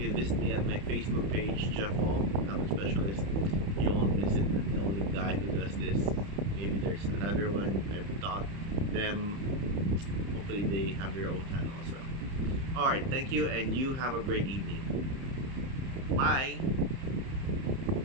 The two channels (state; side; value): late; left; 30 ms